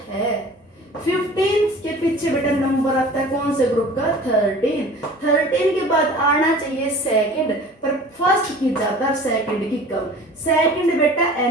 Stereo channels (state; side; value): normal; both; correlation 0.44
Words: है। 15 के पीछे बेटा नंबर आता है कौन से ग्रुप का 13 के बाद आना चाहिए सेकंड, पर फर्स्ट की ज्यादा सेकंड की कम, सेकंड बेटा